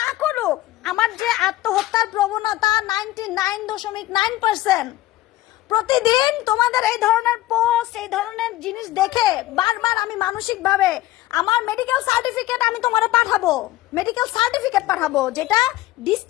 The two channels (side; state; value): right; quieter; 16.1 dB